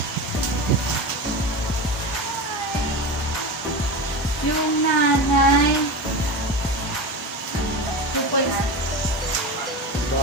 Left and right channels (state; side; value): normal; both; correlation 0.24